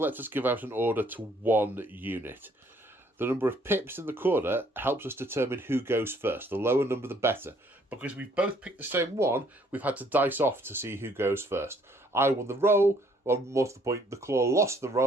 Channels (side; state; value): both; normal; correlation 0.63